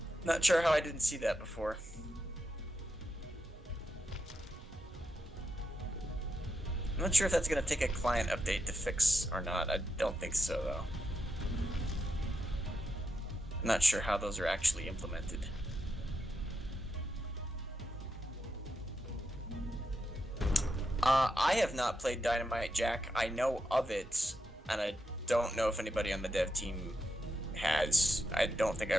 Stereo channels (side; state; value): both; normal; correlation 0.85